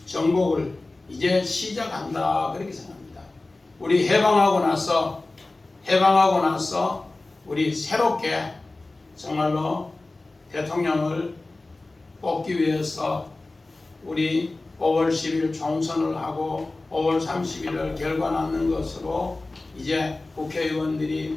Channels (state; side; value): quieter; right; 3.1 dB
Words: 정복을 이제 시작한다, 그렇게 생각합니다. 우리 해방하고 나서 우리 새롭게 정말로 대통령을 뽑기 위해서 우리 5월 10일 총선을 하고 5월 30일을 결과 낳는 것으로 이제 국회의원들이